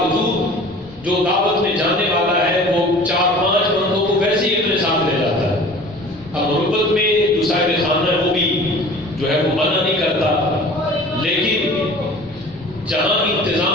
جو دعوت میں جانے والا ہے وہ 4-5 بندوں کو ویسے ہی اپنے ساتھ لے جاتا ہے۔ اب غربت میں جو صاحب خانہ ہے وہ بھی جو ہے وہ منع نہیں کرتا، لیکن جہاں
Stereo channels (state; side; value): normal; both; correlation 0.43